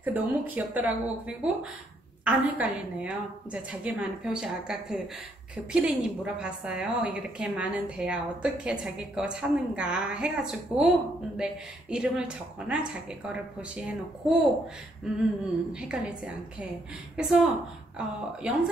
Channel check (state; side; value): normal; both; correlation 0.72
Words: 너무 귀엽더라고. 그리고 안 헷갈리네요. 이제 자기만의 표시. 아까 그 피디님 물어봤어요. 이렇게 많은 대야 어떻게 자기 거 찾는가 해가지고, 근데 이름을 적거나 자기 거를 표시해 놓고 헷갈리지 않게. 그래서